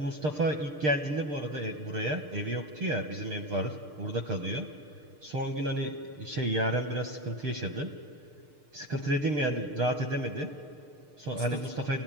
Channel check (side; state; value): left; late; 6.6 ms